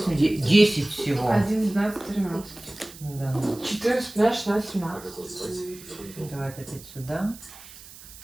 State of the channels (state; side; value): noise; right; hiss, 18 dB below the sound